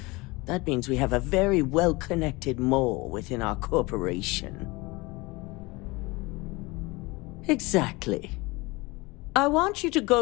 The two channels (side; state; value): right; quieter; 23.6 dB